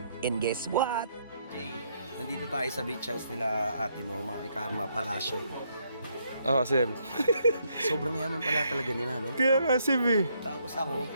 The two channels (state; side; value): inverted; both; correlation -0.73